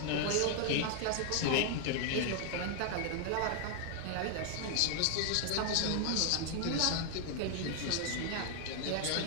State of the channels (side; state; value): both; different; correlation 0.00